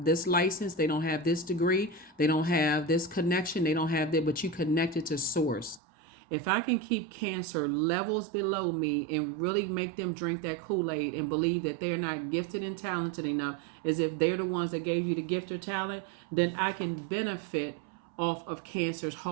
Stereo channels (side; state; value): left; drops out; at 5.8 s